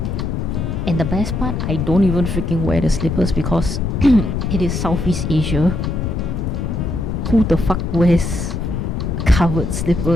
And the best part, I don't even freaking wear the slippers because it is Southeast Asia. Who the fuck wears covered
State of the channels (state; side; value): noise; left; rumble, 2 dB below the sound